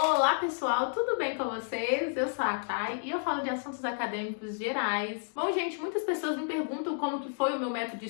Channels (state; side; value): silent; right; digital silence